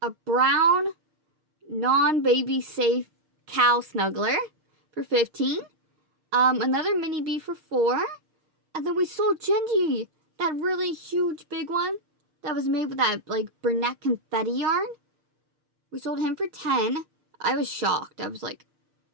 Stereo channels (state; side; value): late; left; 6.5 ms